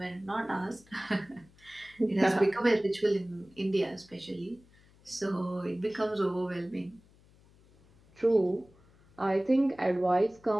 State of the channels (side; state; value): left; noise; hum, 28 dB below the sound